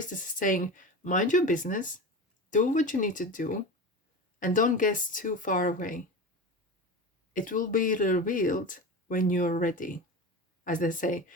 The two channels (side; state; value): both; normal; correlation 0.27